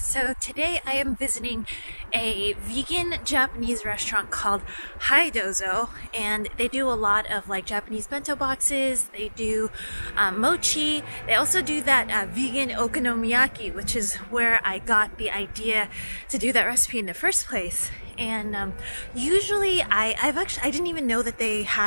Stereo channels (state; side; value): inverted; both; correlation -1.00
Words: today I am visiting a vegan Japanese restaurant called Dozo, and they do a lot of like Japanese bento boxes. They do mochi. They also do that vegan okonomiyaki, which is where I got the idea to do that recipe in the first place. And usually I didn't even know that they